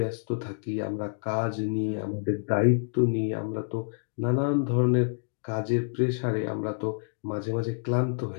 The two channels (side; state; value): right; silent; digital silence